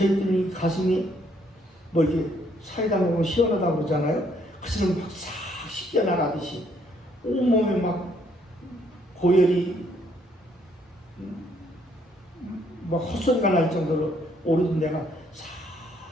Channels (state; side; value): normal; both; correlation 0.68